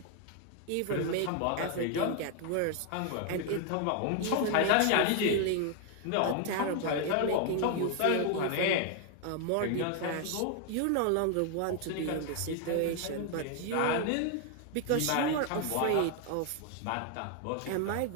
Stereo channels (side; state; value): both; different; correlation 0.00